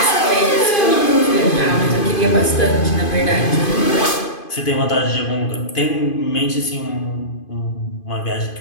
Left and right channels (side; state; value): right; late; 2.5 ms